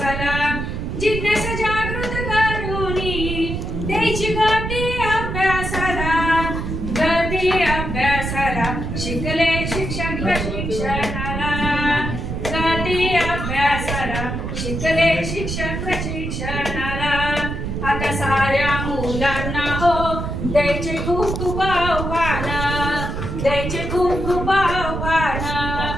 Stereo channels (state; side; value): noise; right; rumble, 4 dB below the sound